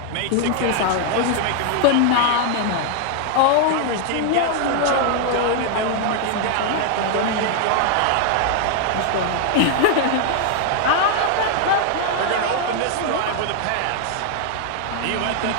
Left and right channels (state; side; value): different; both; correlation 0.00